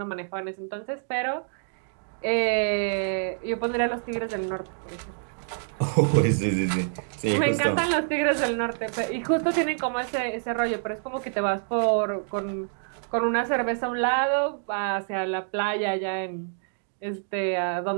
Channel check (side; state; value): left; silent; digital silence